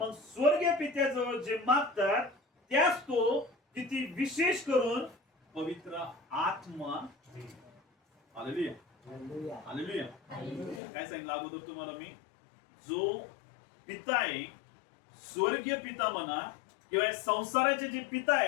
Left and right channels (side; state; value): right; drops out; at 10.8 s